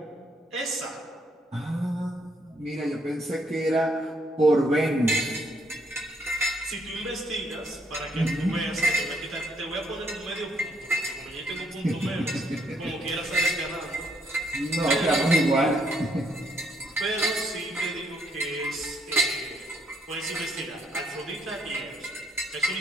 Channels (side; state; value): both; normal; correlation 0.72